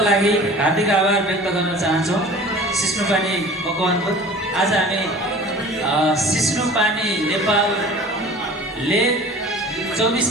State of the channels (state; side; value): normal; both; correlation 0.43